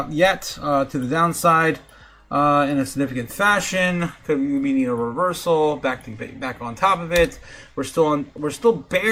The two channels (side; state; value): both; identical; correlation 1.00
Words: yet to the downside in a significant fashion. We need a reversal back on top of it. We're still